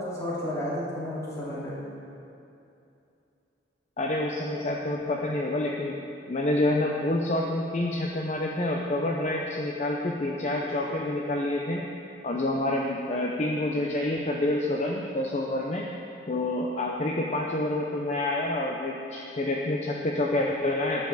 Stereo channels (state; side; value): normal; both; correlation 0.43